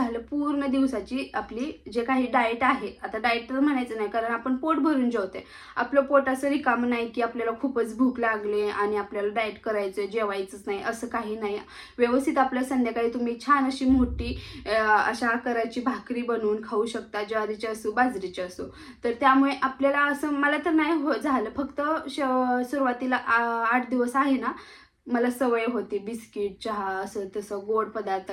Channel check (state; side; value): identical; both; correlation 1.00